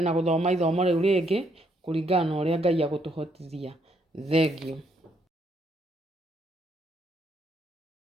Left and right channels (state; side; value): normal; both; correlation 0.73